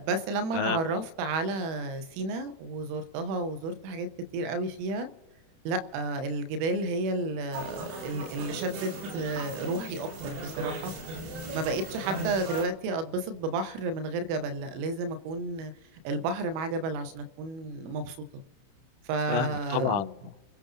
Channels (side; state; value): left; late; 31 ms